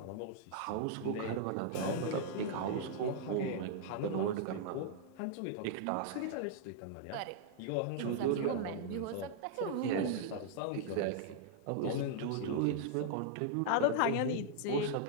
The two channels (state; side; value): different; both; correlation -0.01